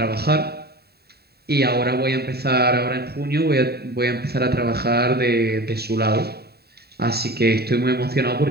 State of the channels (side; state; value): left; late; 0.46 ms